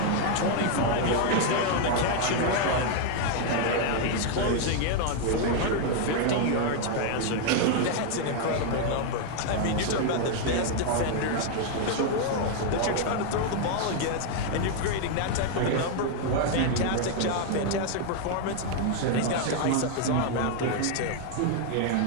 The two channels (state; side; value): different; both; correlation 0.00